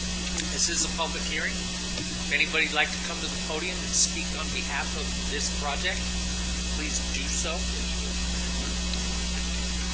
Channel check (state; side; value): identical; both; correlation 1.00